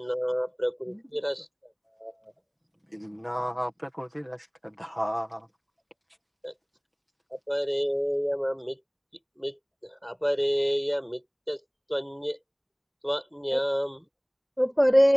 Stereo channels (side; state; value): both; identical; correlation 1.00